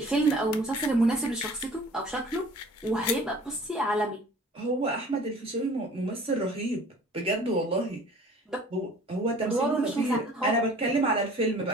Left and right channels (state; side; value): normal; both; correlation 0.49